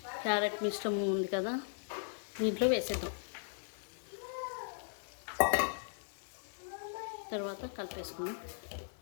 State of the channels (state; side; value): silent; right; digital silence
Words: క్యారెట్ మిశ్రమం ఉంది కదా, దీంట్లో వేసేద్దాం. తర్వాత కలిపేసుకుందాం.